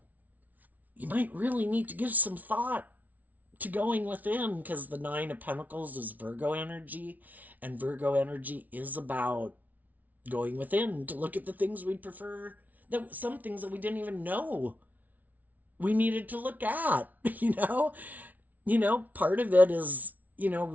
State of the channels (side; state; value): left; late; 0.076 ms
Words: You might really need to give some thought to going within, because the Nine of Pentacles is Virgo energy, and Virgo energy is about going within to look at the things we prefer, that some things that we didn't even know we needed to look at. Part of it is